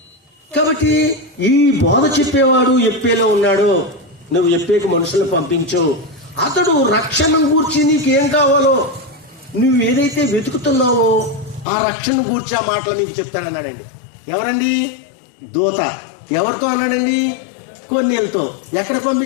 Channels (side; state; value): right; drops out; at 11.7 s